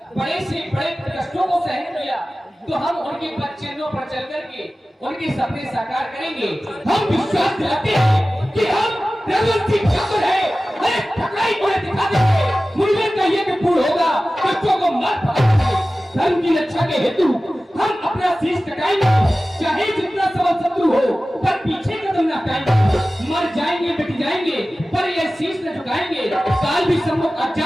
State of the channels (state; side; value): normal; both; correlation 0.96